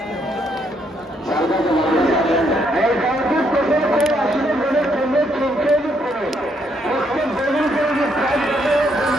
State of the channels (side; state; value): both; normal; correlation 0.73